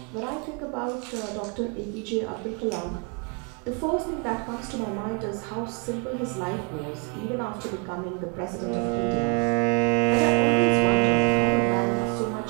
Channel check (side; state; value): left; quieter; 31.9 dB